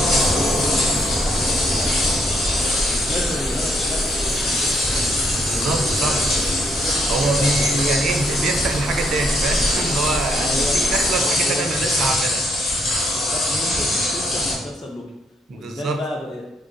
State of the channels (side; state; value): both; normal; correlation 0.72